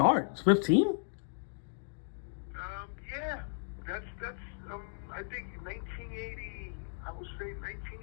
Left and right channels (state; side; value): silent; right; digital silence